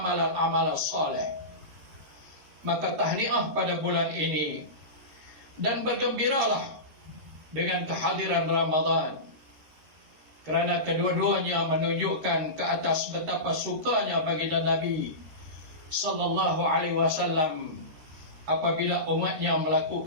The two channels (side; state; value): left; late; 13 ms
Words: soleh. Maka tahniah pada bulan ini, dan bergembiralah dengan kehadiran Ramadan, kerana kedua-duanya menunjukkan ke atas betapa sukanya baginda Nabi sallallahu alaihi wasallam apabila umatnya